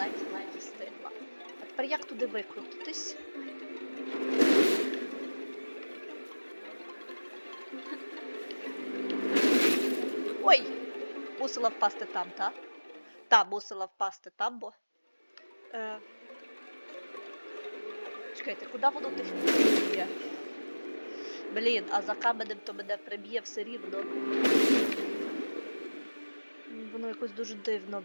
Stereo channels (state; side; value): inverted; both; correlation -1.00